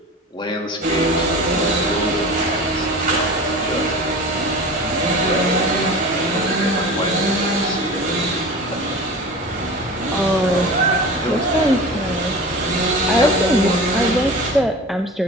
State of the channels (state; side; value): normal; both; correlation 0.35